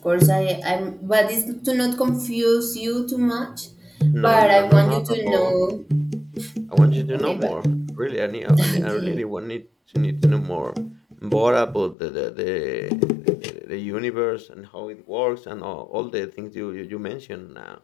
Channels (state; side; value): drops out; right; at 12.0 s